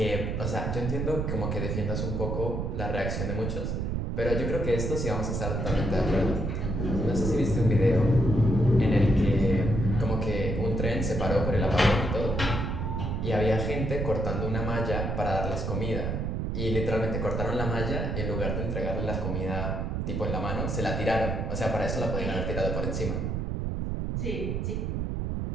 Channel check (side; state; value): right; noise; rumble, 1 dB below the sound